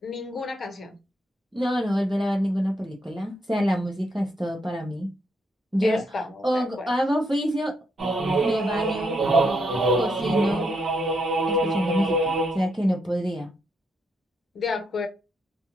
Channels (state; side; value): normal; both; correlation 0.77